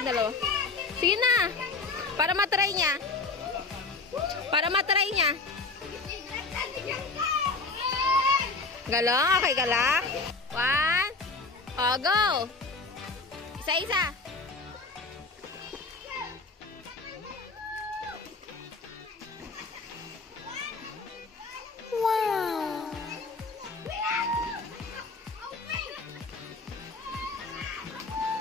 dalawa. Sige na. Para matry niya. Galang? Okay ka lang? 1. Oh, go! Isa-isa. Wow!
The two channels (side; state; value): right; quieter; 3.9 dB